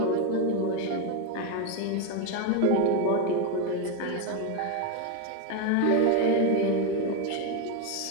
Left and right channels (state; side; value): different; both; correlation 0.02